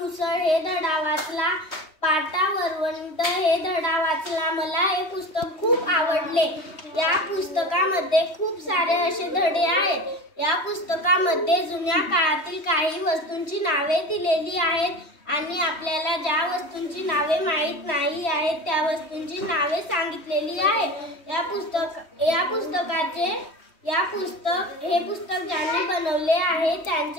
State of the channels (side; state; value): right; late; 3.2 ms